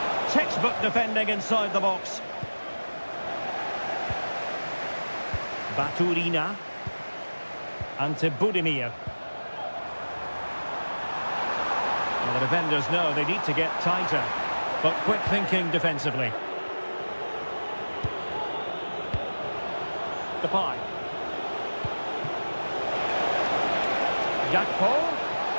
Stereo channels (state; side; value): inverted; both; correlation -1.00